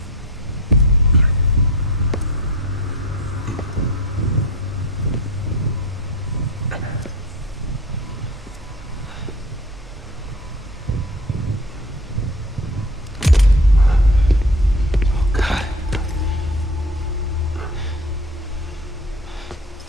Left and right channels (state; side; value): normal; both; correlation 0.36